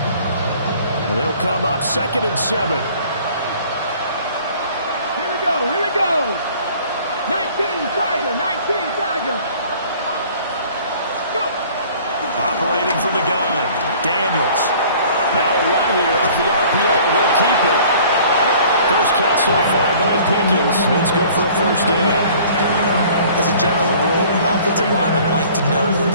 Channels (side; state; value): both; inverted; correlation -0.51